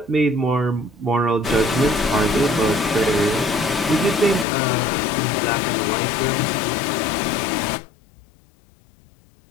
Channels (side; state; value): right; drops out; at 4.5 s